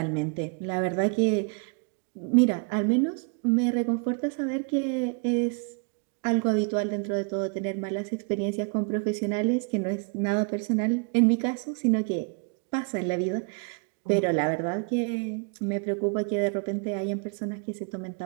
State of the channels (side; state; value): left; quieter; 37.3 dB